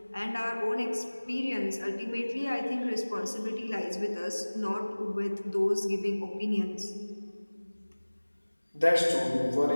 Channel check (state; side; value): inverted; both; correlation -1.00